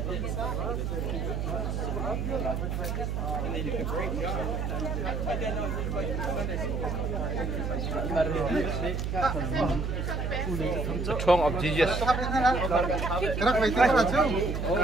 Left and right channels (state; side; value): noise; right; hum, 1 dB below the sound